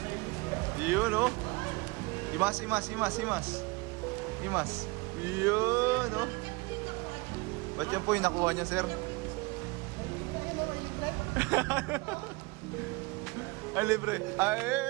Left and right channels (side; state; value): left; quieter; 25.3 dB